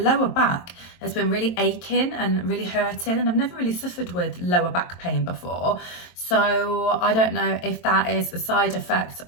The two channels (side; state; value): right; late; 23 ms